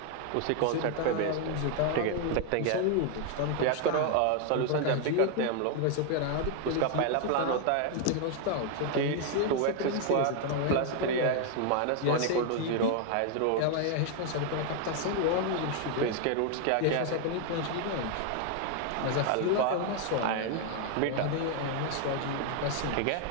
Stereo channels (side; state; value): both; different; correlation 0.00